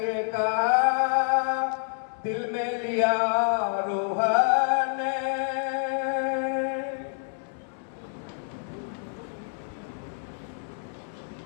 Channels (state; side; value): silent; right; 60 dB below the other